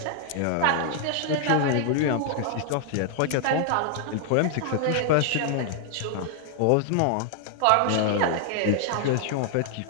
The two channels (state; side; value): different; both; correlation 0.00